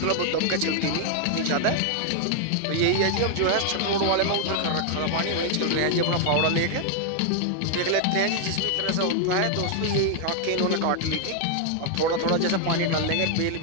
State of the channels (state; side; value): different; both; correlation 0.00